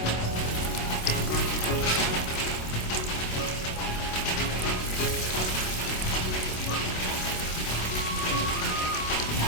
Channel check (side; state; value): right; late; 27 ms